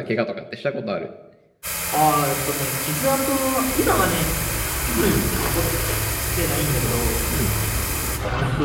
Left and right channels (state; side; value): identical; both; correlation 1.00